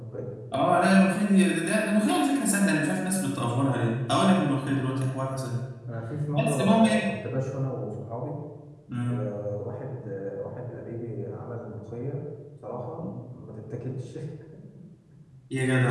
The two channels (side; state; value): both; identical; correlation 1.00